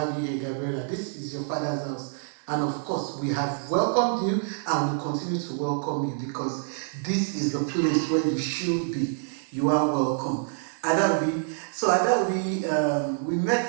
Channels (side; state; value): left; silent; 60 dB below the other